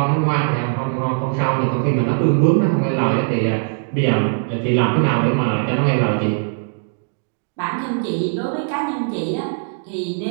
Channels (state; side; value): silent; left; digital silence